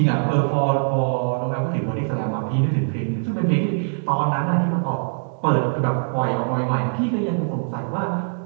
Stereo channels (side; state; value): left; silent; 64 dB below the other